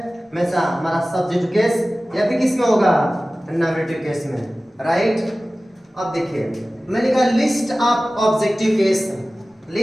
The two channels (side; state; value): both; normal; correlation 0.97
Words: हमेशा हमारा सब्जेक्ट केस या फिर किस में होगा, नॉमिनेटिव केस में, राइट। अब देखिए मैंने कहा list of objective case,